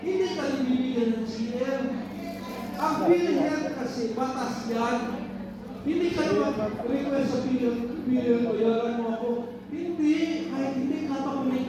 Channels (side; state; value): both; identical; correlation 1.00